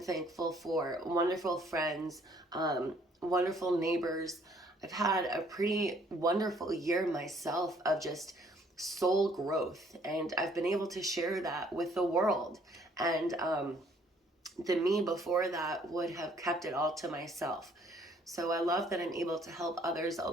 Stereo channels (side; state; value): both; normal; correlation 0.62